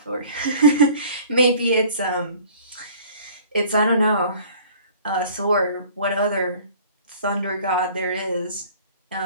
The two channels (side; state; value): both; inverted; correlation -0.49